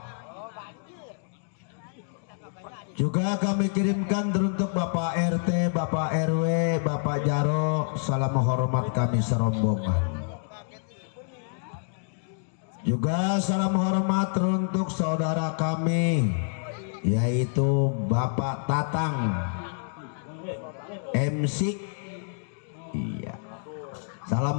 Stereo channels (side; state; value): right; silent; digital silence